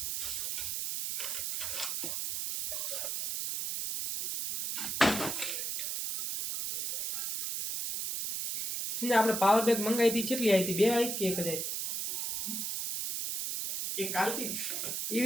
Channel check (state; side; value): noise; right; hiss, 2 dB below the sound